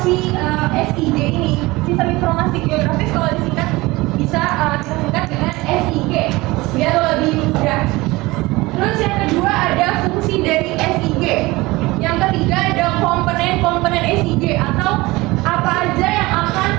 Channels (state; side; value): quieter; left; 21.1 dB